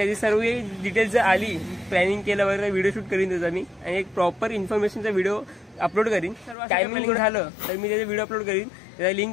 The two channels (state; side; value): drops out; right; at 6.6 s